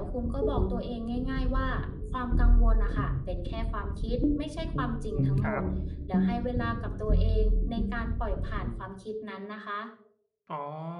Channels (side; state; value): both; identical; correlation 1.00